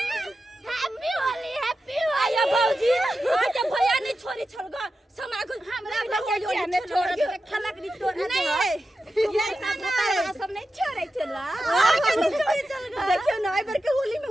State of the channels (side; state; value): both; normal; correlation 0.91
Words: हैप्पी होली भौजी आज भैया नहीं छोड़ी छोड़गा समय को हमरा भैया ने छोड़ के खलक नहीं तोड़ नहीं ये सब नहीं छोड़े चला देखियो ना एक बार के होली में